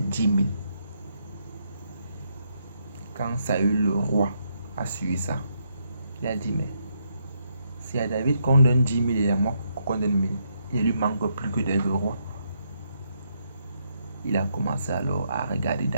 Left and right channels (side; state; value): both; inverted; correlation -0.77